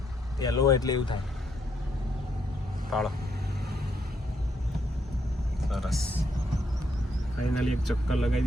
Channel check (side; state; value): both; normal; correlation 0.75